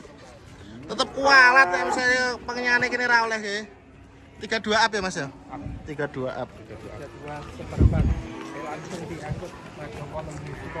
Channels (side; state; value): both; identical; correlation 1.00